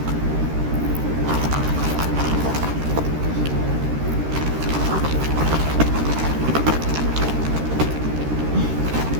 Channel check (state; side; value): late; left; 13 ms